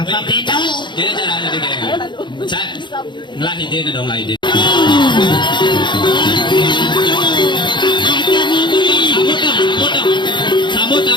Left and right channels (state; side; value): late; right; 0.22 ms